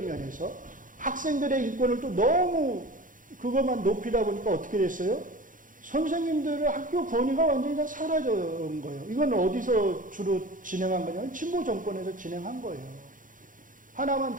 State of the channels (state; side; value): late; left; 0.39 ms